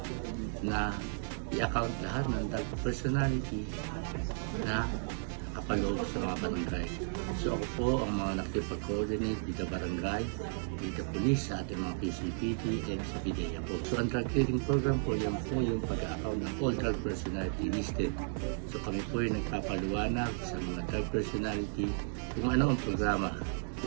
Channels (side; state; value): left; silent; digital silence